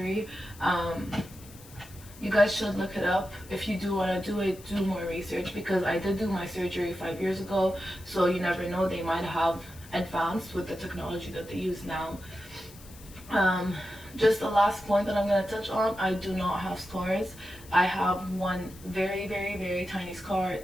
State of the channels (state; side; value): noise; left; hiss, 21 dB below the sound